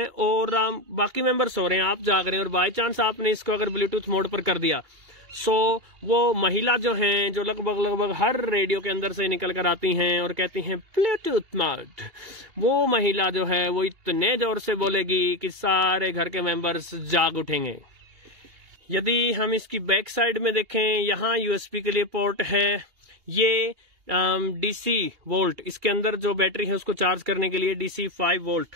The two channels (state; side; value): late; left; 2.8 ms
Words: और बाकी मेंबर सो रहे हैं, आप जाग रहे हैं, और बाय चांस आपने इसको अगर ब्लूटूथ मोड पर कर दिया, सो वो महिला जो हैं, जो लगभग हर रेडियो के अंदर से निकल कर आती हैं और कहती हैं ब्लूटूथ मोड, वो महिला जो है वो इतने जोर से बोलेगी कि सारे घर के मेंबर्स जाग उठेंगे। यदि हम इसकी बैक साइड में देखें, यहाँ USB के लिए पोर्ट है। ये DC वोल्ट, इसके अंदर जो बैटरी है उसको चार्ज करने के लिए DC 5 वोल्ट,